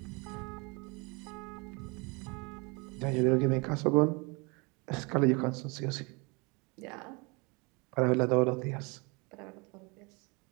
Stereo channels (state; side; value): quieter; left; 29.2 dB